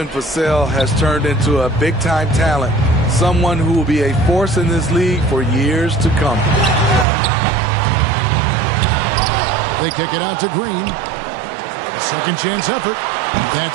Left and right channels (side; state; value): left; drops out; at 7.1 s